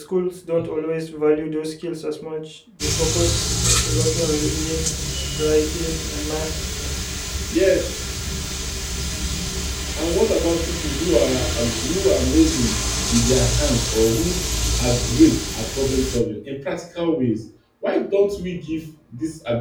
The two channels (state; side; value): identical; both; correlation 1.00